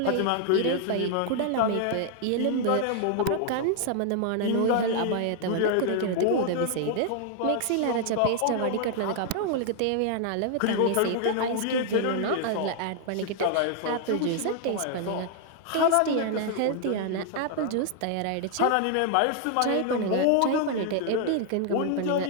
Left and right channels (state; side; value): different; both; correlation 0.00